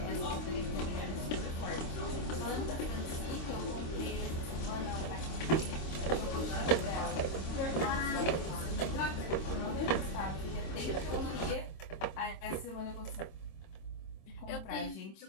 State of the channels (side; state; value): right; late; 26 ms